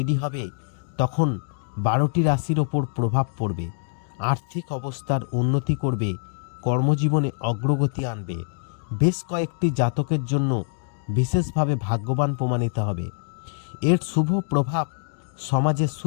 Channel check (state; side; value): silent; right; digital silence